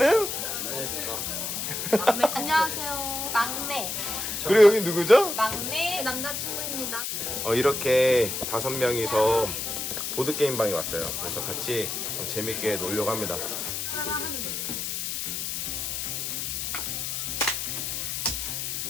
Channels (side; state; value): left; noise; hiss, 3 dB below the sound